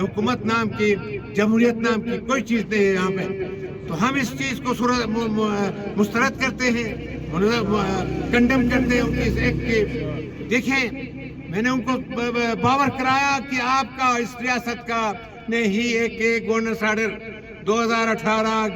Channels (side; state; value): both; identical; correlation 1.00